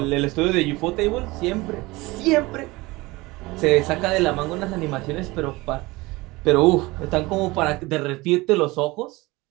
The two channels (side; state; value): left; quieter; 21.7 dB